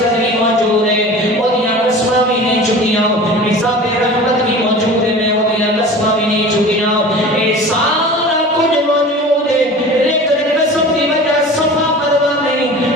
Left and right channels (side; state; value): both; normal; correlation 0.38